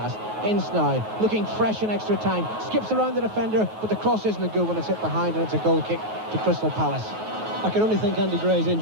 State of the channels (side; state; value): left; late; 9.4 ms